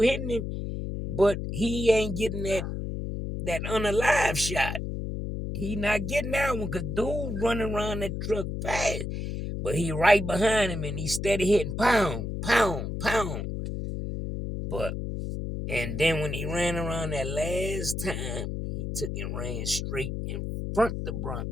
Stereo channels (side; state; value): left; noise; hum, 4 dB below the sound